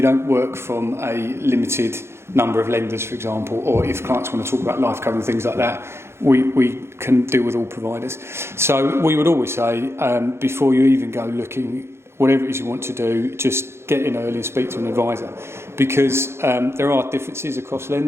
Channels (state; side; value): late; left; 0.12 ms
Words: don't work from a limited number of lenders, for example, or if clients want to talk about life cover and things like that, we can deal with all providers. So we would always say, before you even go looking, whatever it is you want to do, just get in early and speak to an advisor, because there are differences across